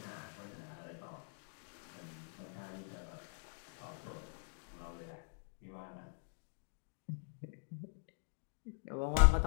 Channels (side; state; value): right; silent; digital silence